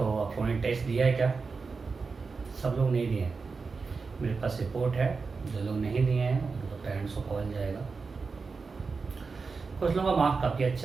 आप लोगों ने टेस्ट दिया है क्या? सब लोग नहीं दिए हैं। मेरे पास रिपोर्ट है, जो लोग नहीं दिए हैं उनको पेरेंट्स को कॉल जाएगा। कुछ लोगों का मार्क्स काफ़ी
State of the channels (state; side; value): quieter; left; 4.6 dB